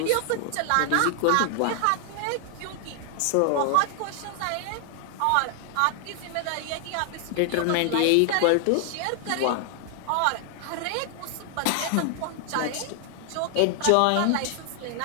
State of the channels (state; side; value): different; both; correlation 0.00